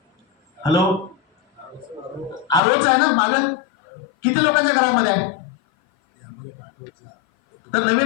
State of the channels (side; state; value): right; drops out; at 2.6 s